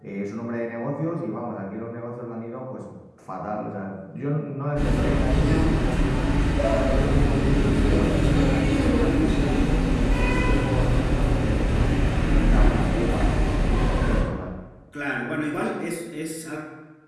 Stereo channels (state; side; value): identical; both; correlation 1.00